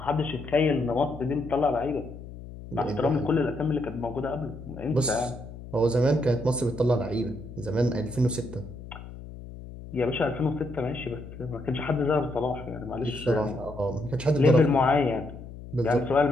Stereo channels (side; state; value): left; noise; hum, 14 dB below the sound